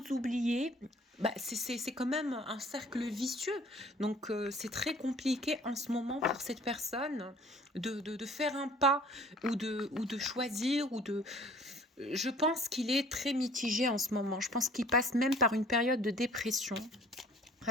oublier. Bah, c'est quand même un cercle vicieux. Donc, c'est très compliqué en ce moment pour cette personne de faire un pas ou de choisir ou de... Je pense qu'il est très mitigé en ce moment. Je pense qu'il passe même par une période de dépression.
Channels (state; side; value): normal; both; correlation 0.52